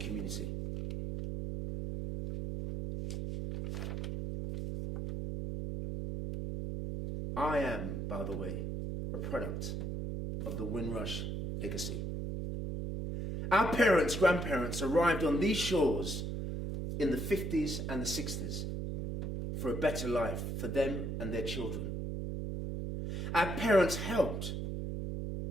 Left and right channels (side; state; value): right; noise; hum, 3 dB below the sound